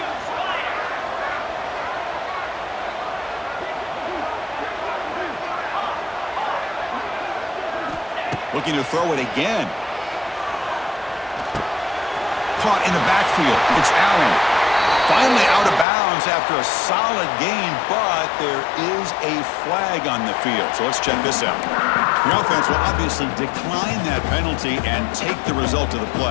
Looking to throw it again. Caught in the backfield. It's Allen. Finally out of bounds after a solid gain, but there is a flag on the field. So let's check this out. The offense will obviously decline that penalty and take the result of the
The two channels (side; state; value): right; drops out; at 15.9 s